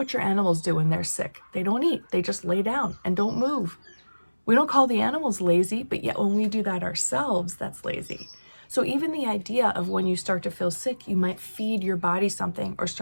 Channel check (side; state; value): both; inverted; correlation -1.00